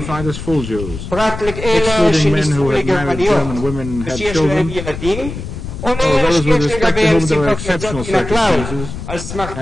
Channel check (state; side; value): noise; left; rumble, 9 dB below the sound